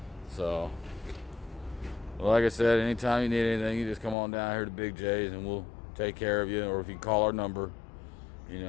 So, well, like I said, anytime you need anything, you just come on down here to Big J's and we'll take care of you. Or if you call our number,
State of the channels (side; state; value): right; drops out; at 4.2 s